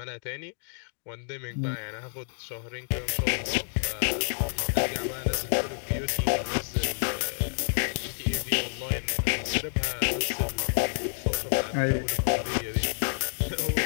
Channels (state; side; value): silent; right; digital silence